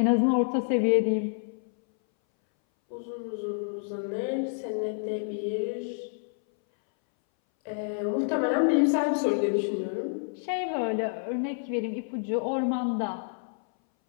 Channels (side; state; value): right; silent; 59 dB below the other